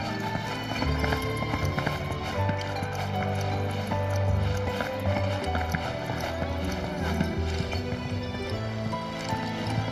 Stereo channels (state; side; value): identical; both; correlation 1.00